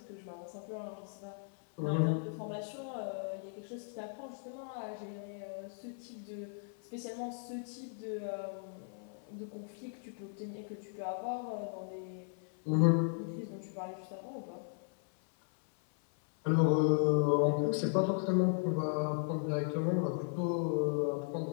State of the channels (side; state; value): right; silent; 53 dB below the other